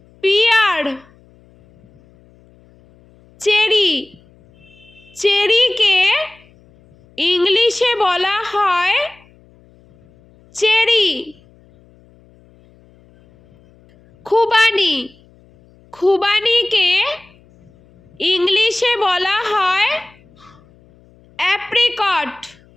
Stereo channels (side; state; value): left; noise; hum, 29 dB below the sound